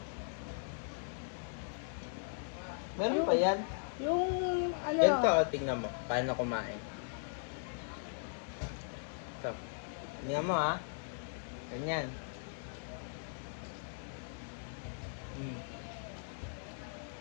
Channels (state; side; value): silent; right; digital silence